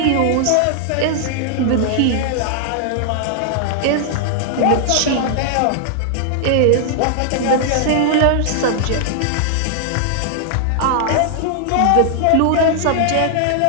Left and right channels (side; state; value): both; different; correlation 0.00